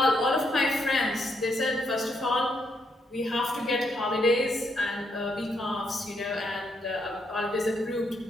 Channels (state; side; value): normal; both; correlation 0.76